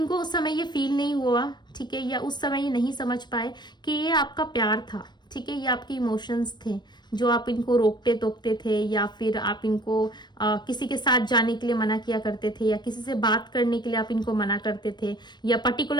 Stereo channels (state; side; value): late; right; 0.21 ms